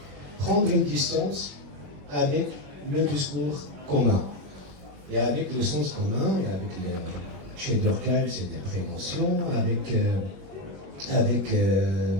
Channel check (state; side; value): late; left; 21 ms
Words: prendre une distance avec le discours commun. Et avec le sens commun, et avec chez Durkheim, c'est des préventions, avec